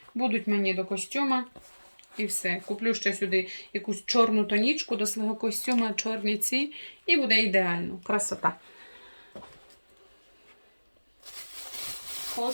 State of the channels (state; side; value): inverted; both; correlation -1.00